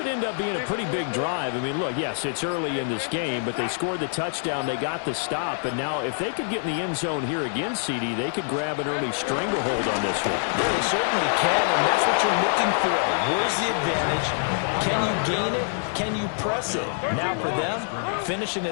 end up being a pretty big drive. I mean, look, yes, it's early in this game, but they scored the touchdown. They got the stop. And now if they could get in the end zone here again, CD, they could grab an early stranglehold on this one. Yeah, they certainly can, and that's what you're looking for. Where's the advantage? Can you gain it? Can you press it? Now for them, finishing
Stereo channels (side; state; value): right; silent; digital silence